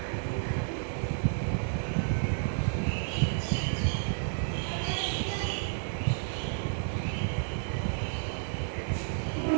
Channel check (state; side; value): silent; left; digital silence